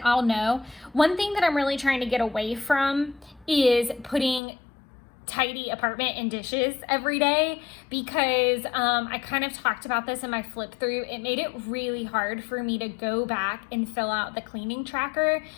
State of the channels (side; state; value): right; drops out; at 4.4 s